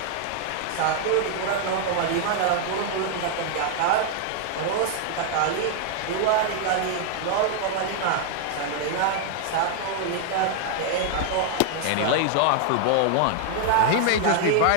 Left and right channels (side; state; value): both; different; correlation 0.00